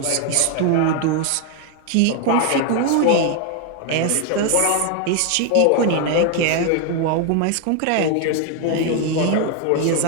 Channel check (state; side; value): different; both; correlation 0.01